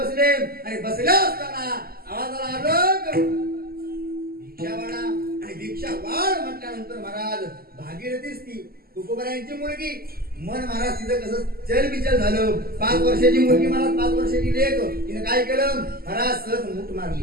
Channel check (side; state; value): left; late; 0.44 ms